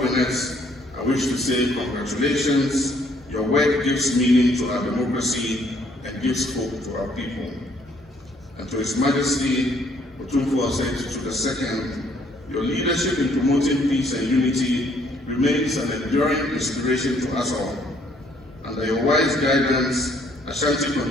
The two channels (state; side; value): normal; both; correlation 0.65